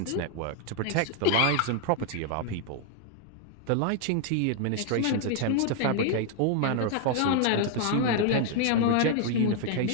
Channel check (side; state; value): both; different; correlation 0.00